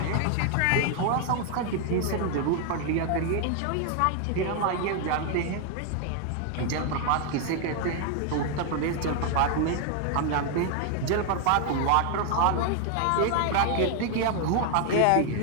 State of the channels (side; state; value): both; different; correlation 0.00